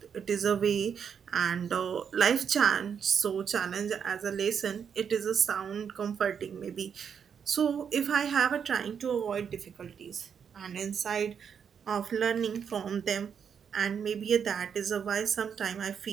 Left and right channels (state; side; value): quieter; left; 7.3 dB